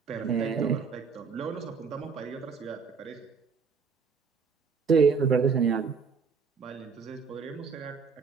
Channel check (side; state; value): left; quieter; 5.5 dB